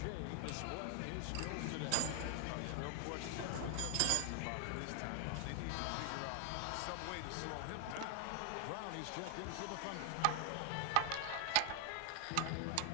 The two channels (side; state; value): both; different; correlation -0.01